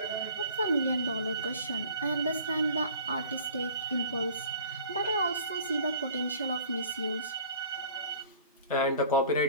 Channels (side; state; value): both; inverted; correlation -0.47